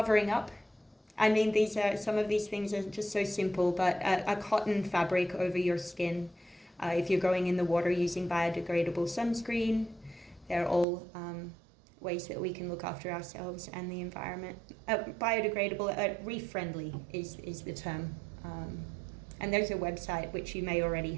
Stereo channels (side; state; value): left; drops out; at 10.9 s